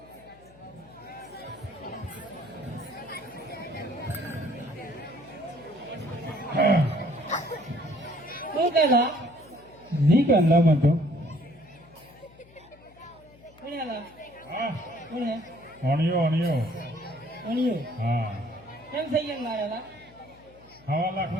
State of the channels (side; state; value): left; noise; hum, 25 dB below the sound